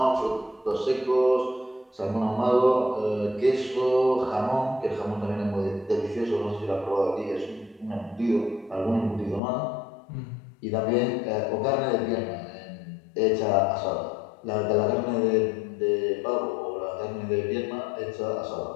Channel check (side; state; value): right; drops out; at 9.4 s